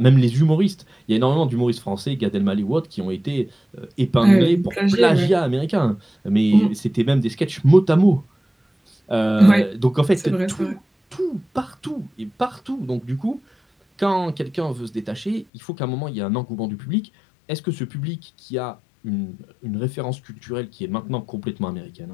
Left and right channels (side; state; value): right; drops out; at 15.5 s